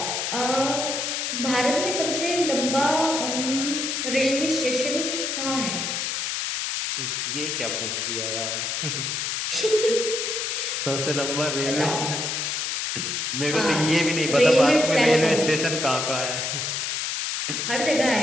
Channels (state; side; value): noise; left; hiss, 1 dB below the sound